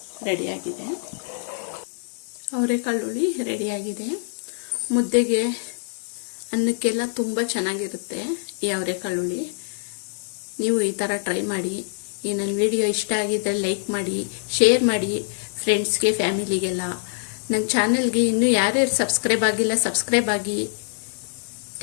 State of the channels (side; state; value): right; silent; digital silence